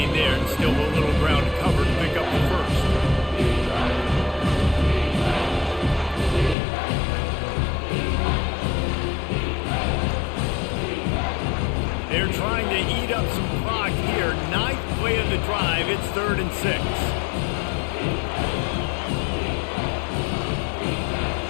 there, and still a little ground to cover to pick up the first. They're trying to eat up some clock here. Ninth play of the drive. It's 3rd and 6.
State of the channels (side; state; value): right; drops out; at 6.6 s